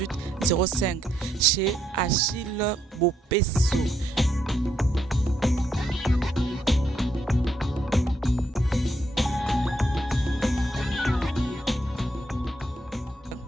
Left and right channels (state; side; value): normal; both; correlation 0.76